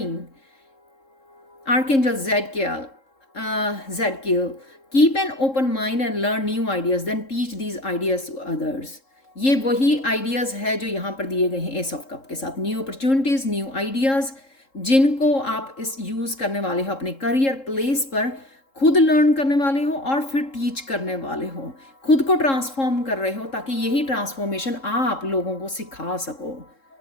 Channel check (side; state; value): right; late; 3.7 ms